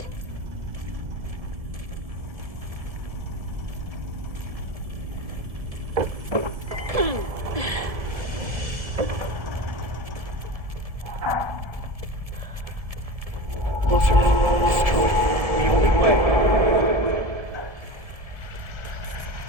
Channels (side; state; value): left; late; 1.7 ms